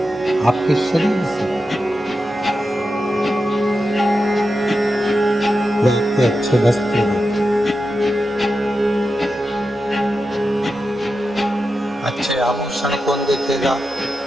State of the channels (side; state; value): both; normal; correlation 0.90